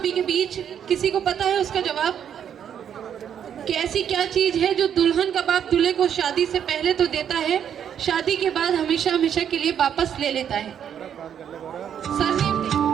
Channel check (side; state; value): left; quieter; 8.9 dB